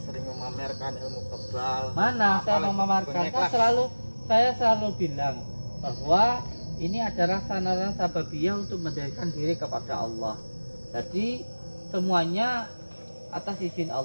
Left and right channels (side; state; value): both; inverted; correlation -1.00